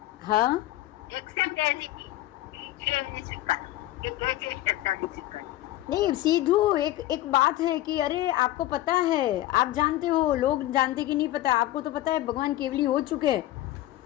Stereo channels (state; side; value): quieter; right; 15.4 dB